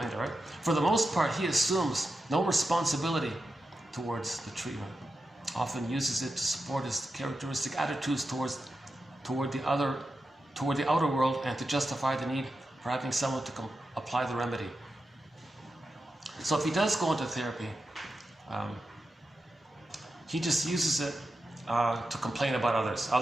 it, right? For the most part, he assumes no responsibility towards the treatment. Often uses it to support his characteristic attitudes toward the outer world and to justify the need for having someone to apply the remedy. So if he does go into therapy, he just uses it to complain about others.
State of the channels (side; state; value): both; normal; correlation 0.90